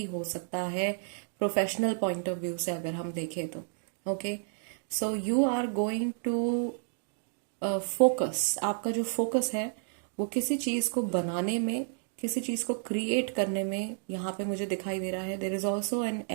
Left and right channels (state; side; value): silent; left; digital silence